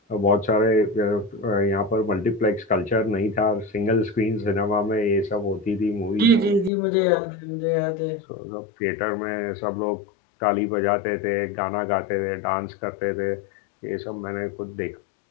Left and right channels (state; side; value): drops out; right; at 6.7 s